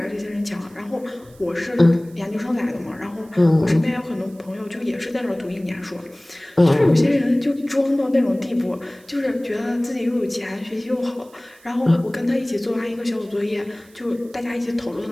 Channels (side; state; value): right; noise; hiss, 27 dB below the sound